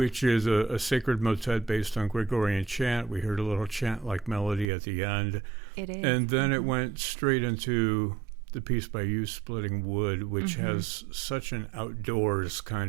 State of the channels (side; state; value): left; drops out; at 4.7 s